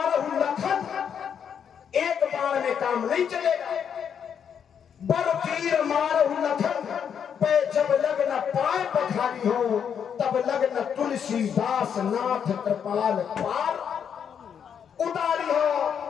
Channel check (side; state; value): right; quieter; 7.8 dB